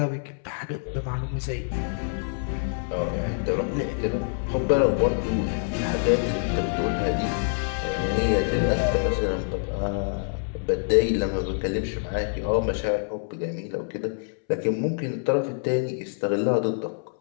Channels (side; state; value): right; silent; 61 dB below the other